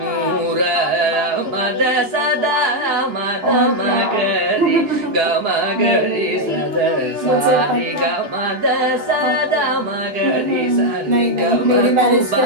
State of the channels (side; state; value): left; late; 2.9 ms